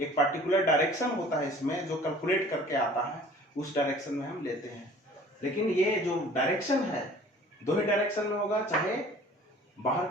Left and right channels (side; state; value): both; normal; correlation 0.49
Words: एक पर्टिकुलर डायरेक्शन होता है इसमें जो कैलकुलेट करके आता है, उस डायरेक्शन में हम लेते हैं। लेकिन ये जो डायरेक्शन है दो ही डायरेक्शन में होगा, चाहे बाहर